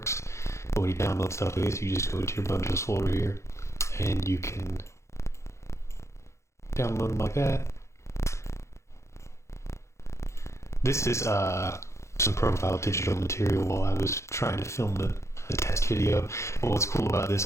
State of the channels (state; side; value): late; right; 0.14 ms